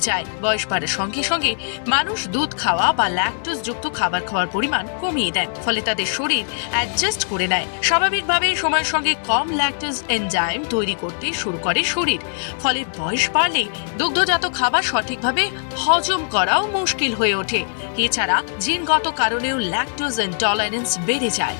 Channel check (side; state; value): right; silent; digital silence